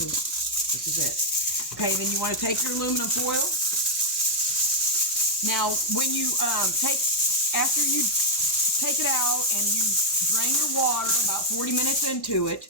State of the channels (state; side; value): normal; both; correlation -0.03